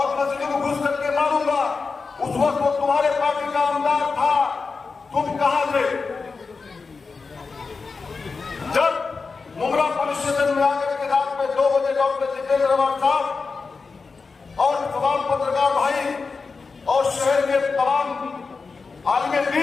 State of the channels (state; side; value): quieter; right; 4.6 dB